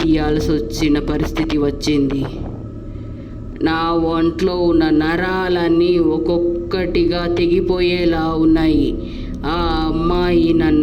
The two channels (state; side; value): identical; both; correlation 1.00